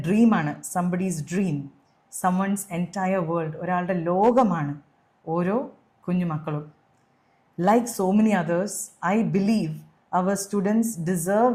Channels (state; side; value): identical; both; correlation 1.00